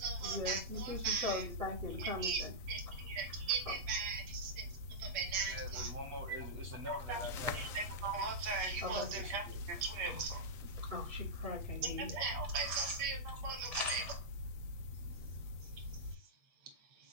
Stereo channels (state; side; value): late; left; 8.3 ms